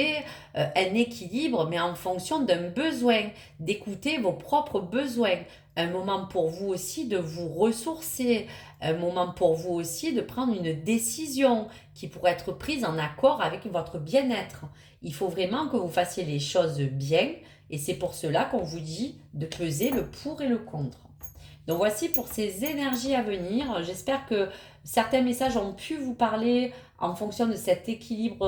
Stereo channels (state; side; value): identical; both; correlation 1.00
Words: un équilibre, mais en fonction d'un besoin, d'écouter vos propres besoins. Un moment pour vous aussi de vous ressourcer, un moment pour vous aussi de prendre une décision qui pourrait être prise en accord avec votre bien-être. Il faut vraiment que vous fassiez les choses bien et c'est pour cela qu'on vous dit de peser le pour et le contre. Donc voici pour ces énergies à venir. J'espère que certains messages ont pu vous parler en fonction de cet